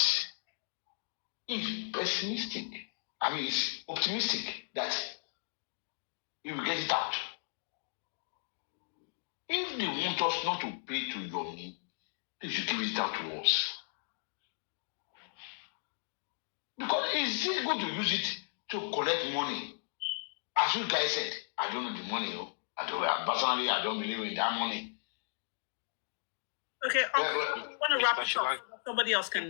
it's pessimistic. I mean, it's optimistic that you will get it out. If they want us not to pay to Yomi, they should give it out to us. Because is he going to use it to collect money? As you guys said, I don't know the money. Personally, I don't believe in that money. Okay, I want to wrap it up. Somebody else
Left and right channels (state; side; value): silent; right; digital silence